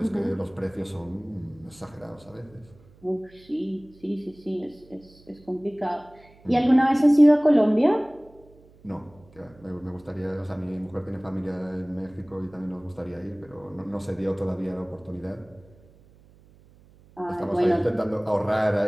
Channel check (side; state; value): right; noise; hum, 26 dB below the sound